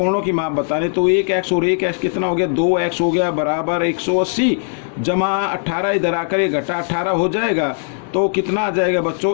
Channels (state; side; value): silent; right; digital silence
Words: की माप बताने तो 1x और 1x कितना हो गया, 2x हो गया, बराबर 180 जमा 18 इधर आकर ये घटा 18 हो जाएगा। तो कितना आ जाएगा